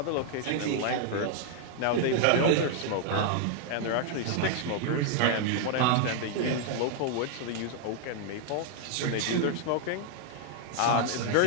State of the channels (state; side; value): different; both; correlation 0.00